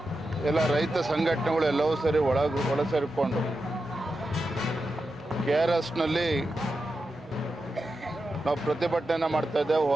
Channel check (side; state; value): both; normal; correlation 0.89